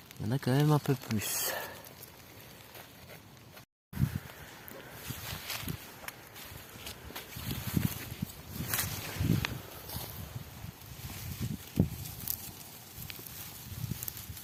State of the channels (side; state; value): both; identical; correlation 1.00